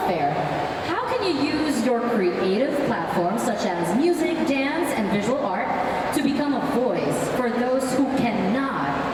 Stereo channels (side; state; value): right; noise; rumble, 30 dB below the sound